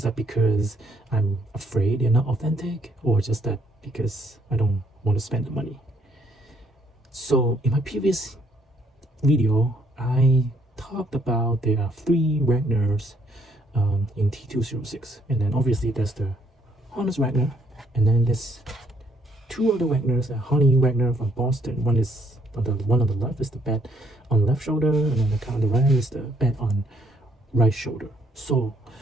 that because I'm afraid they're not authentic, or just that because I don't want to spend the money? So in my previous video I talked about there are three Wagners in T206, and then obviously there's the Honest Wagner, and then there's two other Wagners, a Honey Wagner from Boston. One is on the one on the left is the bet on left shoulder, and then the on the right is the bet on right shoulder. So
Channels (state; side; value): normal; both; correlation 0.69